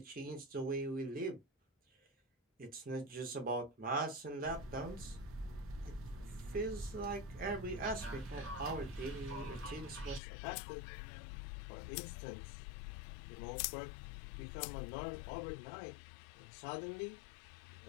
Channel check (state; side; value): drops out; right; at 10.2 s